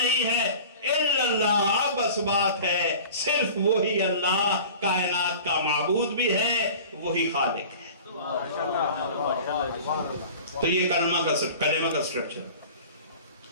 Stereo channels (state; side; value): inverted; both; correlation -0.40